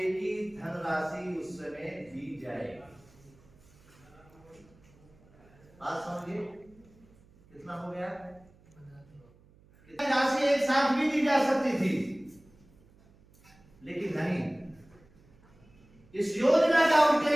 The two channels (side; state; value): right; noise; hum, 28 dB below the sound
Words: की धनराशि उस समय दी जाएगी। बात समझिए कितना हो गया, कितनी राशि एक साथ भी दी जा सकती थी, लेकिन नहीं, इस योजना का